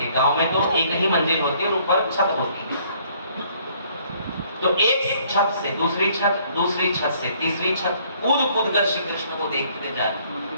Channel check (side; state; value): both; inverted; correlation -0.62